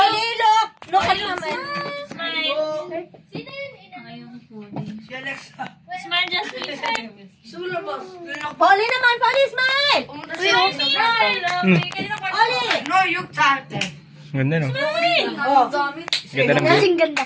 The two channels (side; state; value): both; identical; correlation 1.00